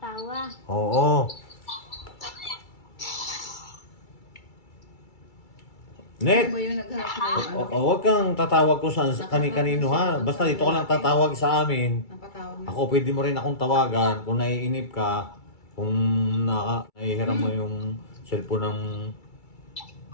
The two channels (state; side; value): late; right; 2.3 ms